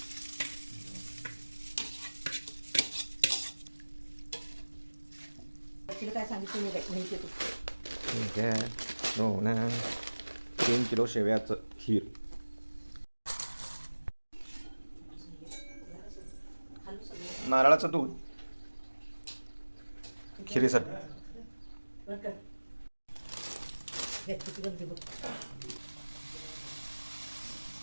काय सांगितलं माहिती तू ठीक आहे. हो ना, 3 किलो शेवयाचं खीर. नारळाचं दूध खिरीसाठी.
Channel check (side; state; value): both; inverted; correlation -1.00